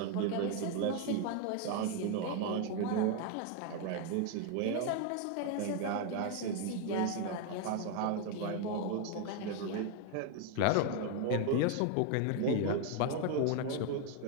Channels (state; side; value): different; both; correlation 0.01